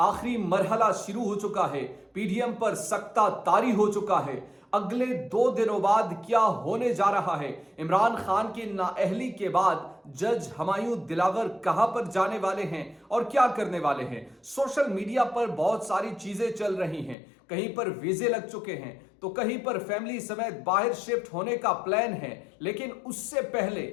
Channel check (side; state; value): right; drops out; at 17.2 s